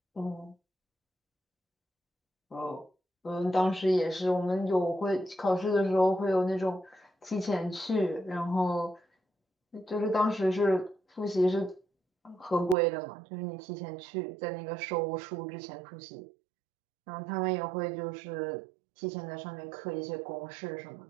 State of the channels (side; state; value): left; drops out; at 12.8 s